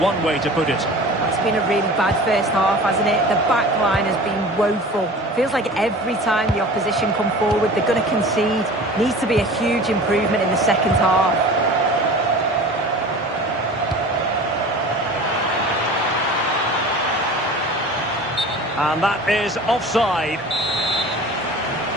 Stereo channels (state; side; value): normal; both; correlation 0.39